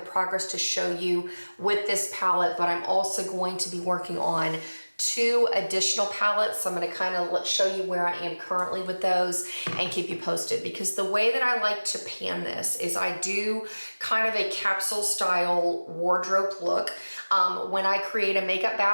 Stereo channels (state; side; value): inverted; both; correlation -1.00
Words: progress to show you with this palette, but I'm also going to be working on 2 additional palettes. So I'm going to kind of show you where I am currently with those and keep you posted, because the way that I like to pan this is I do kind of a capsule style wardrobe look. When I create a makeup